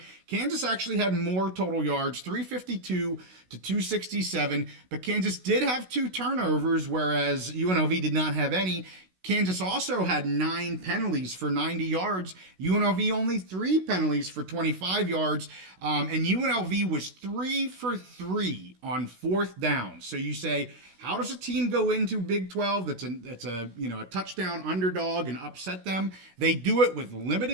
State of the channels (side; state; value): left; late; 16 ms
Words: Kansas actually had more total yards, 352 to 267, but Kansas did have 2 turnovers, whereas UNLV did not have any. Kansas also had 9 penalties for 90 yards. UNLV only 3 penalties for 25 yards. And UNLV was 3 for 3 on 4th down. So you say, how does a team go into Big 12 that's a touchdown underdog and upset them? They do it with